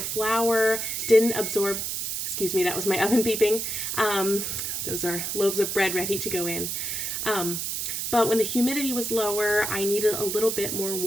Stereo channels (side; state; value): right; noise; hiss, 3 dB below the sound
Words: didn't absorb, excuse me, that was my oven beeping. Those are loaves of bread ready to go in. But when the humidity was lower, I needed a little bit more